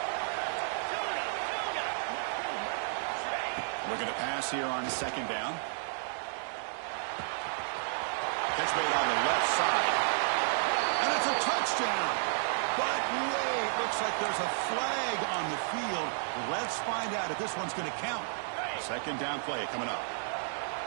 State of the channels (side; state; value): left; silent; digital silence